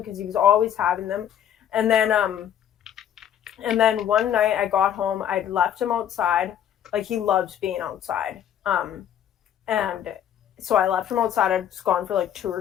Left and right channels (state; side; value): quieter; right; 10.0 dB